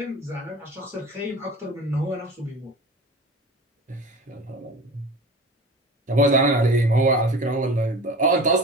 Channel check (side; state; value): both; normal; correlation 0.36